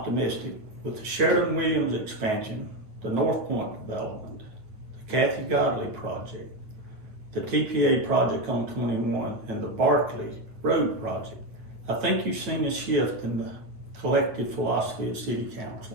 with the Sheridan-Williams expansion, the North Point development, the Kathy Godley project, the TPA project on 21, and the Barkley Road project, I think you've seen a shift in the collective philosophy of City Council.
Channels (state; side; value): late; left; 8.9 ms